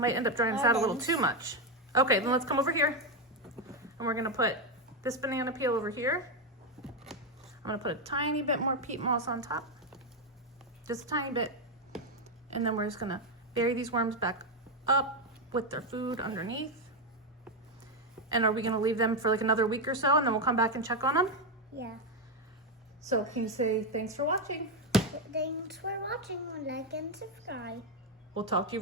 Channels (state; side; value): normal; both; correlation 0.06